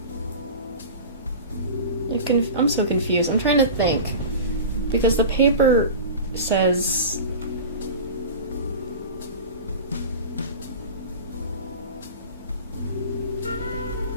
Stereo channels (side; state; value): both; inverted; correlation -0.32